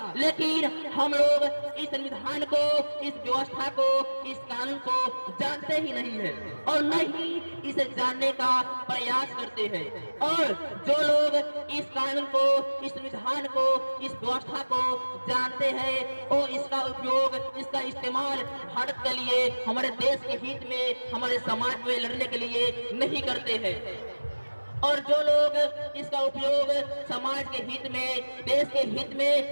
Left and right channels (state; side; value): inverted; both; correlation -1.00